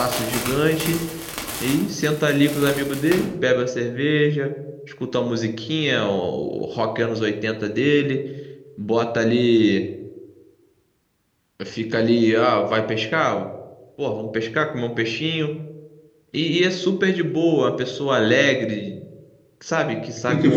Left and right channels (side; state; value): both; identical; correlation 1.00